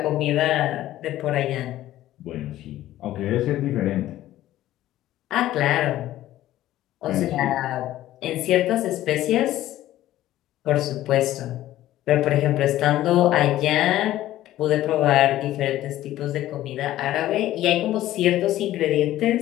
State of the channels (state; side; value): quieter; right; 14.2 dB